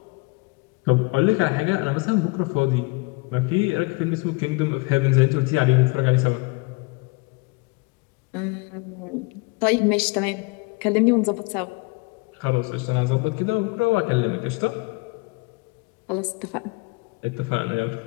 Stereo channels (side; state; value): right; quieter; 27.2 dB